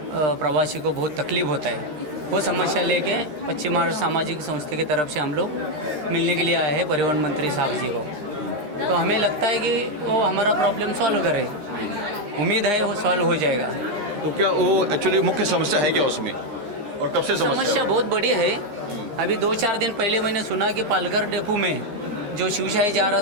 प्रवासी को बहुत तकलीफ होता है। वो समस्या लेके पश्चिम महाराष्ट्र सामाजिक संस्था की तरफ से हम लोग मिलने के लिए आए हैं परिवहन मंत्री साहब जी को। तो हमें लगता है कि वो हमारा प्रॉब्लम सॉल्व करे, उम्मीद है वो सॉल्व हो जाएगा। तो क्या वो एक्चुअली मुख्य समस्या है क्या उसमें, और कब से समस्या बहुत बड़ी है? अभी 2-4 दिन पहले मैंने सुना कि पालघर डिपो में जो शिवशाही जा रहा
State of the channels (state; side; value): late; left; 13 ms